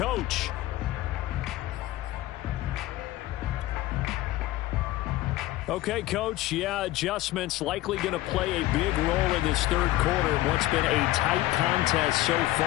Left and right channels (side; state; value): right; quieter; 16.4 dB